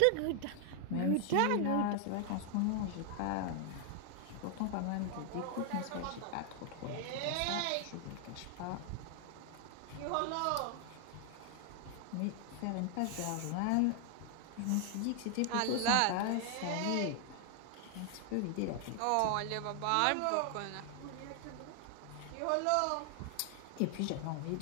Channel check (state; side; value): different; both; correlation 0.00